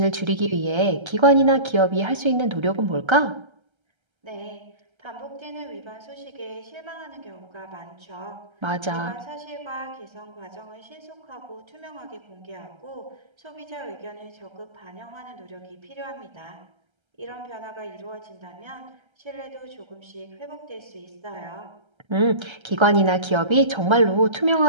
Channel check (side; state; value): left; late; 1.3 ms